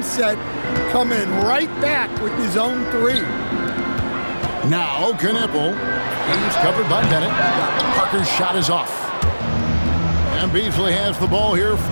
coming right back with his own 3. Now Knueppel. He's covered by Bennett. Parker's shot is off. And Beasley has the ball here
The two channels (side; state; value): both; inverted; correlation -1.00